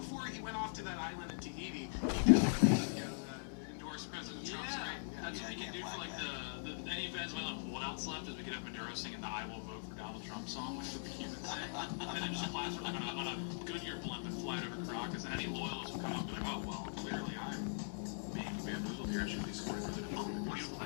he went off to that island in Tahiti, he definitely endorsed President Trump's right. That's what we can do for like any events. What else left is we could have Maduro singing the "I Will Vote for Donald Trump" song, which is what the Cubans say, and then just plaster them on a Goodyear blimp and fly it over Caracas, and any loyalists will come up and be like, oh well, clearly I'm being bamboozled here. I should be supporting President Trump.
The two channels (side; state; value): right; silent; 50 dB below the other